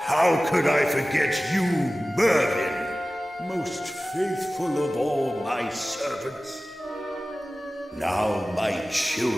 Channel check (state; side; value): normal; both; correlation 0.96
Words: could I forget you, Mervyn? Most faithful of all my servants. Now, my